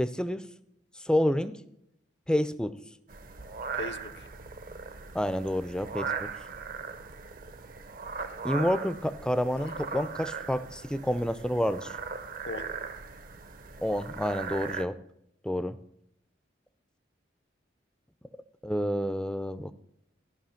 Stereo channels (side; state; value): both; normal; correlation 0.82